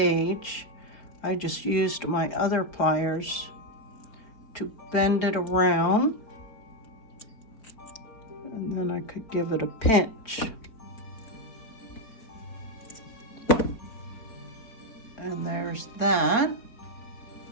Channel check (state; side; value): late; right; 4.5 ms